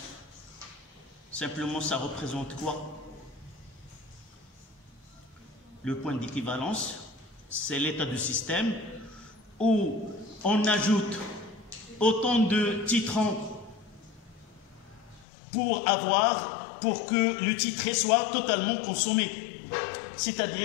Simplement, ça représente quoi? Le point d'équivalence, c'est l'état du système où on ajoute autant de titrants pour que le titré soit totalement consommé.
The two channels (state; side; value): drops out; right; at 15.2 s